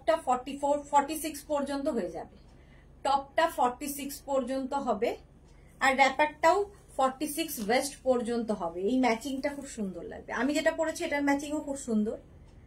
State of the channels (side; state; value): both; identical; correlation 1.00